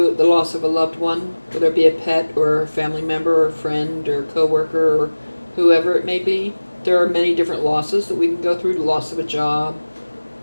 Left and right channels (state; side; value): inverted; both; correlation -1.00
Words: the loss of a loved one, whether it be a pet or a family member or a friend or a coworker or whoever it may be, there are many different losses that we can go through. The loss of a job,